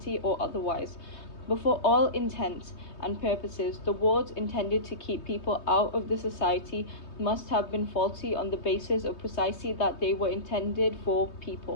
or otherwise, but for all intents and purposes, the wards intended to keep people out of the society must have been faulty on the basis of precisely that they were intended for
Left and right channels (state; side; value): late; right; 3.2 ms